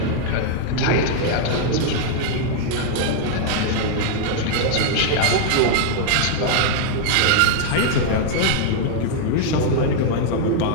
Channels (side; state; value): both; different; correlation 0.00